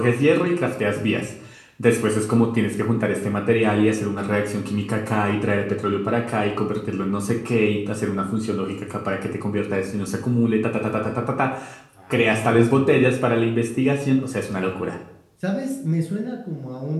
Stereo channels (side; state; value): both; identical; correlation 1.00